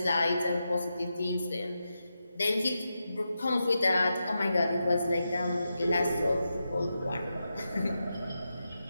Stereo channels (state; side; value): inverted; both; correlation -0.88